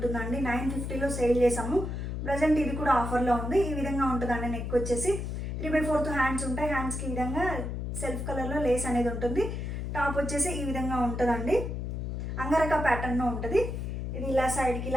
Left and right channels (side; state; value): left; noise; hum, 4 dB below the sound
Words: 950లో సేల్ చేసాము. ప్రజెంట్ ఇది కూడా ఆఫర్లో ఉంది. ఈ విధంగా ఉంటుందండి. నెక్ వచ్చేసి 3/4 హ్యాండ్స్ ఉంటాయి. హ్యాండ్స్కి ఈ విధంగా సెల్ఫ్ కలర్లో లేస్ అనేది ఉంటుంది. టాప్ వచ్చేసి ఈ విధంగా ఉంటుందండి. అంగరక ప్యాటర్న్లో ఉంటుంది. ఇది ఇలా సైడ్కి